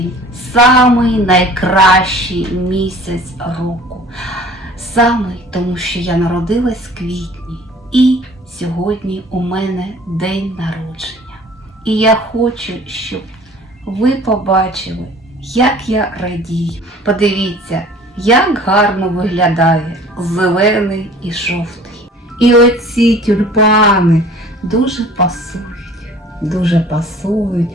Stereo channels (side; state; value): both; normal; correlation 0.48